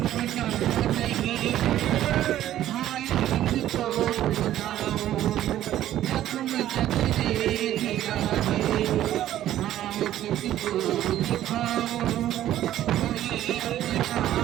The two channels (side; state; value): left; quieter; 12.7 dB